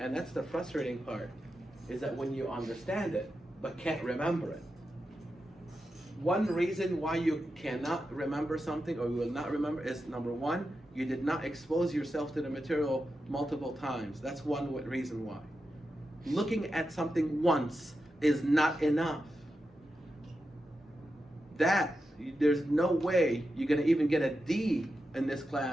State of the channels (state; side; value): normal; both; correlation 0.89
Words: that's the frustrating part, is that when you understand it, but can't remember it. One reason why you cannot remember something or you will not remember is, number one, you did not expose yourself to the material multiple times. That's one reason why. Looking at something once is not enough. There's no way you're going to even get a D in this